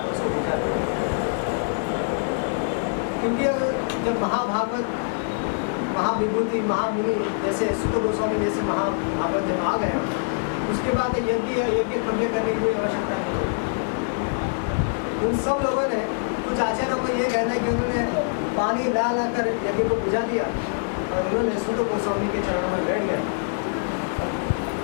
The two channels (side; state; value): right; silent; digital silence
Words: उसको भेजा। क्योंकि जब महाभागवत, महाविभूति, महामुनि जैसे सुत गोस्वामी जैसे महाभागवत जब आ गए, उसके बाद यज्ञ करने की कोई आवश्यकता नहीं होगी। उन सब लोगों ने, कुछ आचार्यों को ये कहना है कि उन्होंने पानी ला कर यज्ञ को बुझा दिया और उन्होंने सुत गोस्वामी के चरणों में बैठ गए।